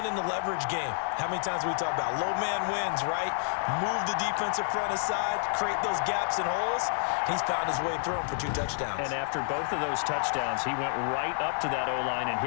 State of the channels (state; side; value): silent; right; 58 dB below the other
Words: the leverage game. How many times we talk about low man wins, right? Move the defensive front aside, create those gaps and holes. He's found his way through them for 2 touchdowns. And after both of those touchdowns, he went right up to that O-line and